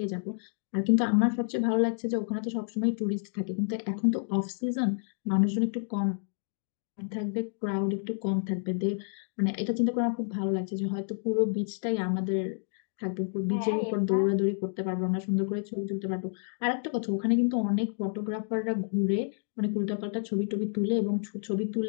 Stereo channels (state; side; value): silent; right; digital silence